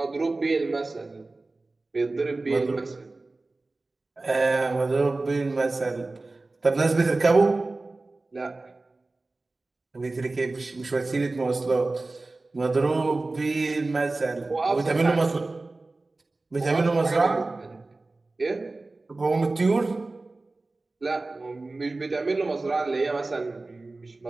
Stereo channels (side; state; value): left; quieter; 3.3 dB